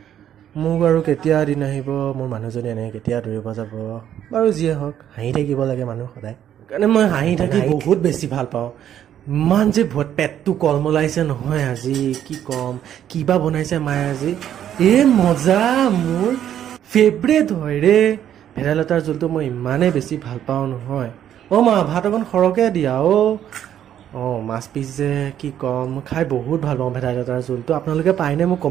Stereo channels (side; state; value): left; quieter; 10.4 dB